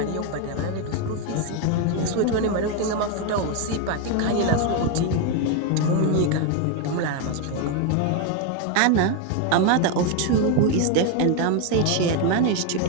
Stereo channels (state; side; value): different; both; correlation 0.01